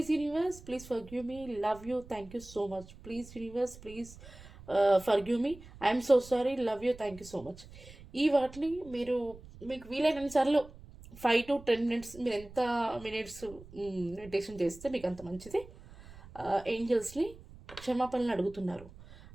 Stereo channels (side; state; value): right; noise; rumble, 19 dB below the sound